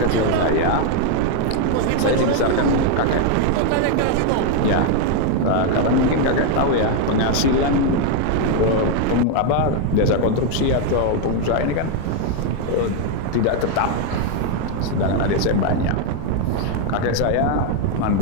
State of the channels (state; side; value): different; both; correlation 0.01